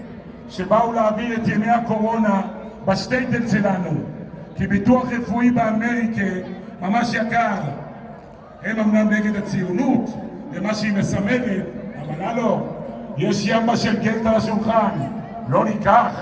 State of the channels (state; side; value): identical; both; correlation 1.00